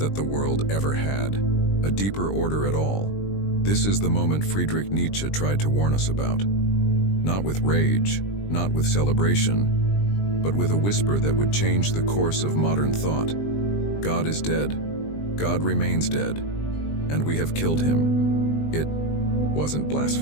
the world ever had a deeper order at all. This is the moment Friedrich Nietzsche tried to warn us about. Not with rage, not with celebration, but with a whisper that would change the course of modern thought. God is dead, God remains dead, and we have killed him. It wasn't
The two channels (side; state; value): right; late; 20 ms